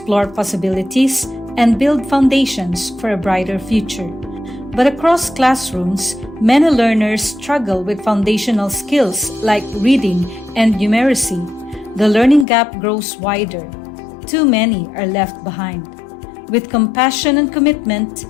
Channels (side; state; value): right; drops out; at 12.5 s